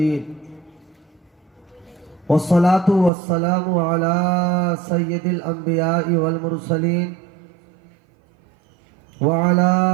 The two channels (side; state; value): left; drops out; at 3.1 s